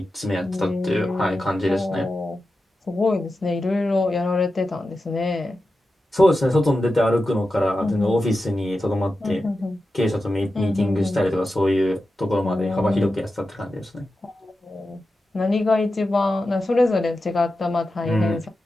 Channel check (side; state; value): both; normal; correlation 0.91